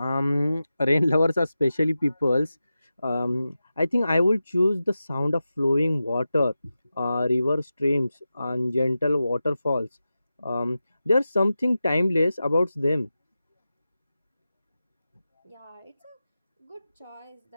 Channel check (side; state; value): both; inverted; correlation -0.93